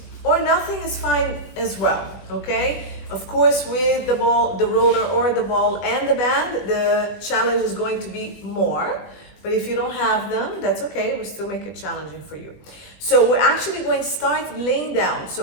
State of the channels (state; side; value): late; right; 20 ms